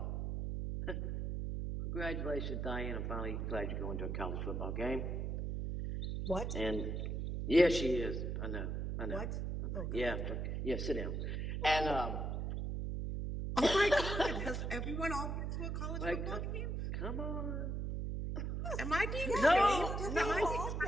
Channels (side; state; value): right; noise; hum, 2 dB below the sound